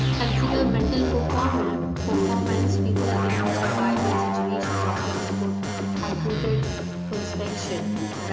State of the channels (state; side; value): identical; both; correlation 1.00